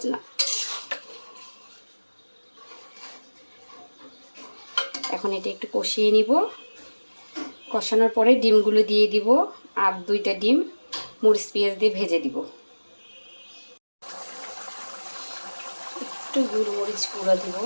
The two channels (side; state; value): both; inverted; correlation -1.00